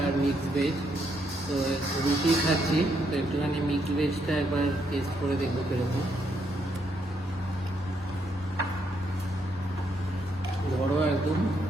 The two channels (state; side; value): normal; both; correlation 0.75